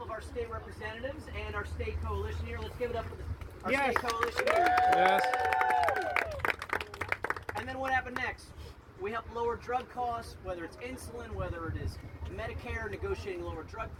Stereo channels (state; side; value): identical; both; correlation 1.00